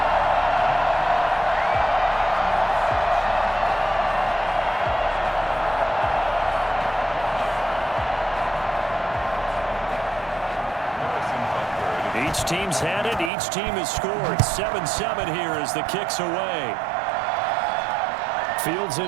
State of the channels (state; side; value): drops out; left; at 13.3 s